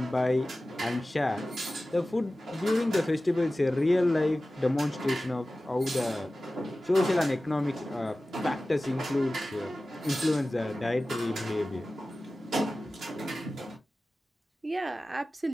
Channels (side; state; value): both; normal; correlation 0.96